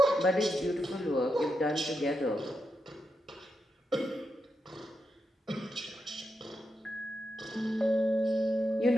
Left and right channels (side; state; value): both; normal; correlation 0.85